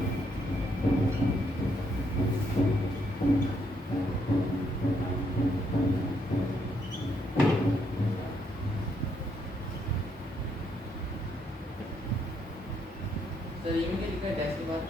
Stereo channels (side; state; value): both; normal; correlation 0.74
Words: सर ई में क्या लिखा है डैश के बाद?